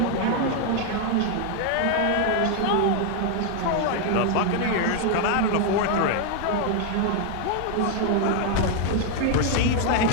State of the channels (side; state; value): both; different; correlation 0.00